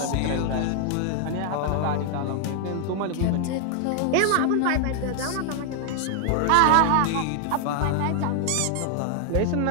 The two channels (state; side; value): different; both; correlation 0.00